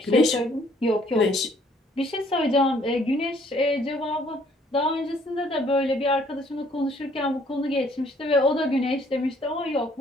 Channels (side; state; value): both; normal; correlation 0.62